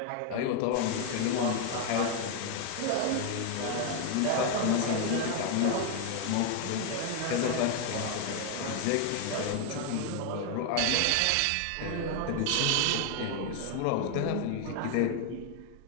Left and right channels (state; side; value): different; both; correlation 0.01